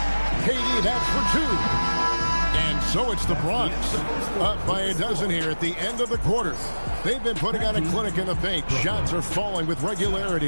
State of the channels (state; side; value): inverted; both; correlation -1.00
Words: KD, that's for 2. And so it's the Bronx, up by a dozen here at the end of the quarter. They've been putting on a clinic in the paint. Shots are falling with